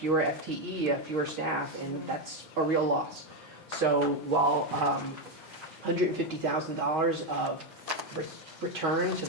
FTE, fewer staff, and that's a real loss. So while $150,000 of return to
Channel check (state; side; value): normal; both; correlation 0.07